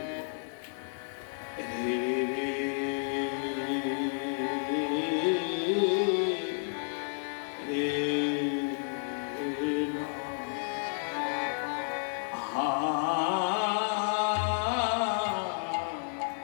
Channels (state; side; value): silent; right; digital silence